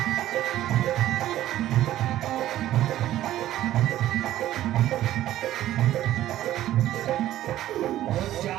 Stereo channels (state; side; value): quieter; left; 13.4 dB